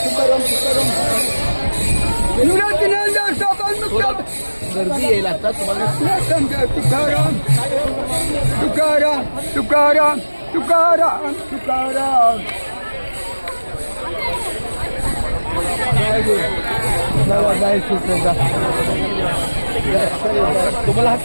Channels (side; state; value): both; inverted; correlation -1.00